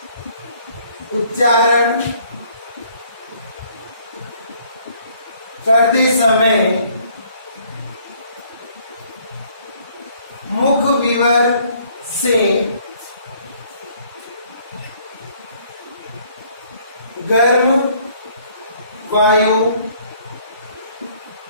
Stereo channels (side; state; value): both; inverted; correlation -0.62